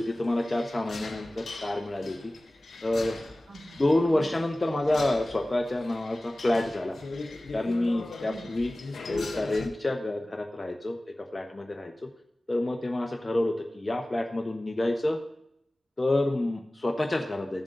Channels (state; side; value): normal; both; correlation 0.97